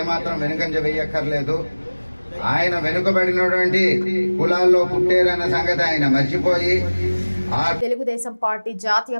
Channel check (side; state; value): both; inverted; correlation -1.00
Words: వెనుకంజ వేయక్కర్లేదు. ఆయన వెనుకబడినటువంటి కులాల్లో పుట్టారన్న సంగతి ఆయన మర్చిపోయి తెలుగుదేశం పార్టీ జాతీయ